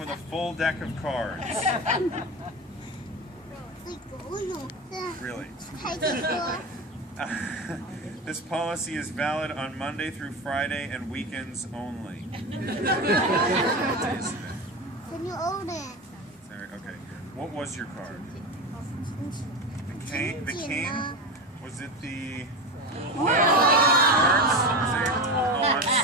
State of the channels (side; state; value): both; normal; correlation 0.23